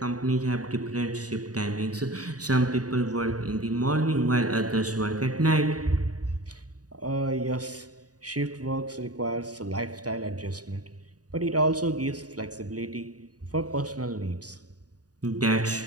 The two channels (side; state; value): left; late; 0.68 ms